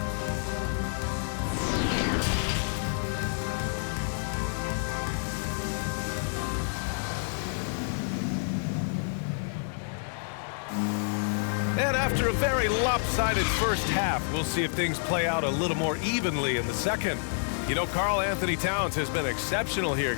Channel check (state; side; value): silent; right; 59 dB below the other